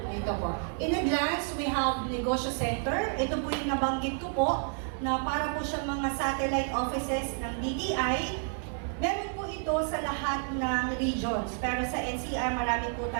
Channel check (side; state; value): left; silent; 58 dB below the other